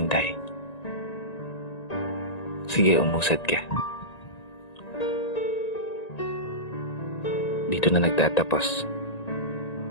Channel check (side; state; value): right; late; 1.9 ms